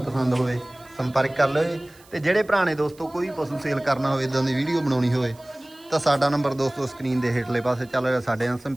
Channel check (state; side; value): noise; right; hiss, 27 dB below the sound